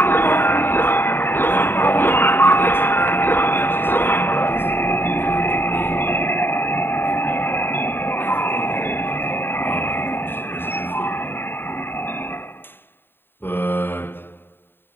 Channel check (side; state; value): right; late; 0.10 ms